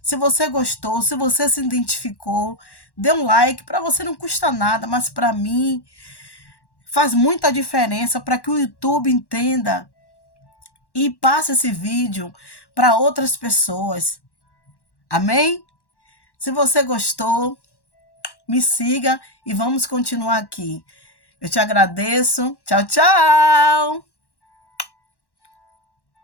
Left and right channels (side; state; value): right; late; 1.1 ms